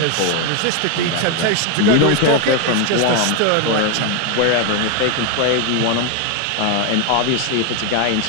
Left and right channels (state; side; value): different; both; correlation 0.01